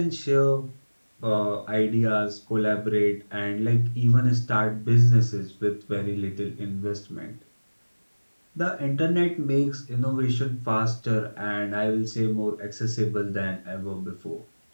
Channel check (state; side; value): inverted; both; correlation -1.00